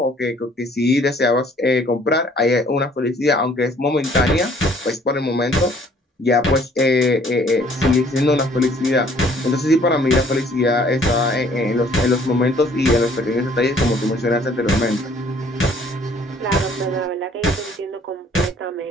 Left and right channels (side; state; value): both; normal; correlation 0.58